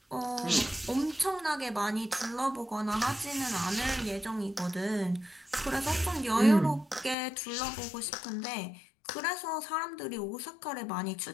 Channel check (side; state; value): right; drops out; at 7.2 s